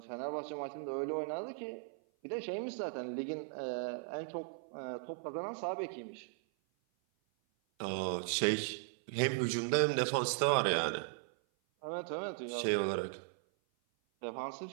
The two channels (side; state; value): left; silent; 53 dB below the other